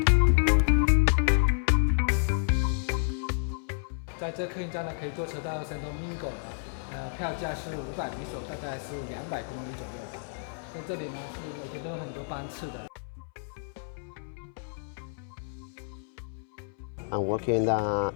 在这客运站呢，可以坐车到 Santo Domingo 的，票价是500比索，大概是200公里左右吧。在这里呢，是每天都有很多班次的。I'm working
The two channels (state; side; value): silent; right; 58 dB below the other